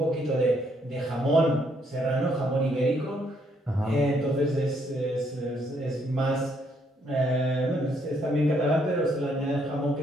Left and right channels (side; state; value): both; normal; correlation 0.71